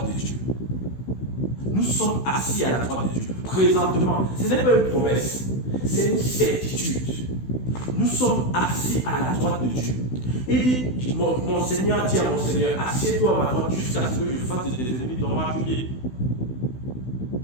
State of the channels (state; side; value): late; right; 16 ms